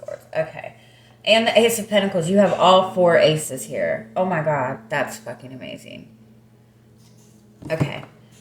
Okay. And the Ace of Pentacles. You have all four aces here. Oh my God. That's fucking amazing. Okay.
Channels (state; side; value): identical; both; correlation 1.00